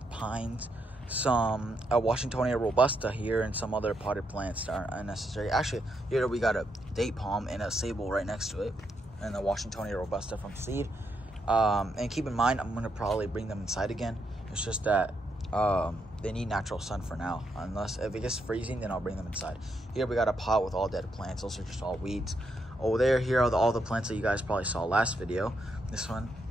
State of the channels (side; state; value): both; normal; correlation 0.79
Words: pines, some Washingtonia robusta here, and some other potted plants that aren't unnecessary. Actually, here we got a date palm and a sable right next to it, and the Washingtonia robusta from seed. And keep in mind, I'm going to probably bring them inside again. It's just that they need natural sun for now. Unless if it gets freezing, then I'll bring them inside. Here we got a pot with all dead plants. Those are just all weeds. Over there, here are all the plants that you guys probably saw last video. This one,